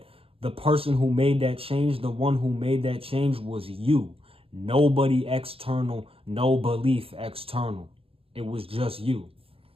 the person who made that change, the one who made that change was you. Nobody external, no belief external. It was just you.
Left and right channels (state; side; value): late; left; 0.27 ms